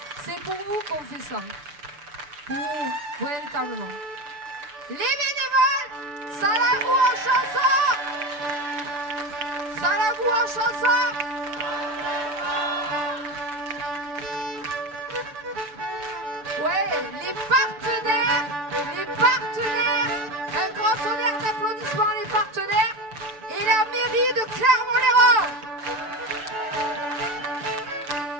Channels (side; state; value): left; late; 6.8 ms